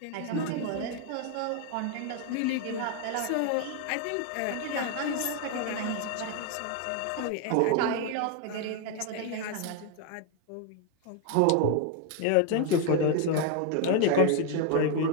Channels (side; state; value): both; different; correlation 0.01